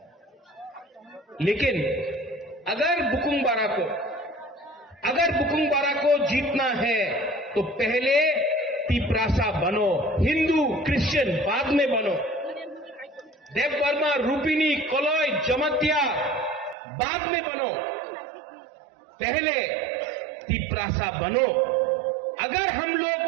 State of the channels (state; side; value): drops out; left; at 16.8 s